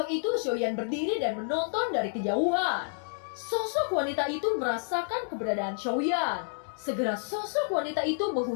itu Xiaoyan berdiri dan menonton dari kejauhan. Sosok wanita itu merasakan keberadaan Xiaoyan. Segera sosok wanita itu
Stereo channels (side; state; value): right; silent; digital silence